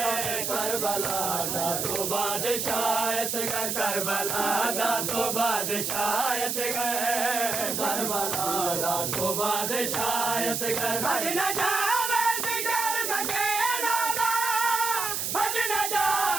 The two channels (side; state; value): right; noise; hiss, 1 dB below the sound